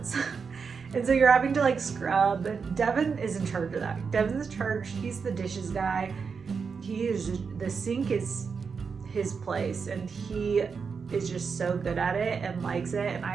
And so you're having to like scrub. Devin is in charge of that. Devin's in charge. He's the dishes guy. The sink is his place, and he is just so good at it and likes it. And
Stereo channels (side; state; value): left; quieter; 5.6 dB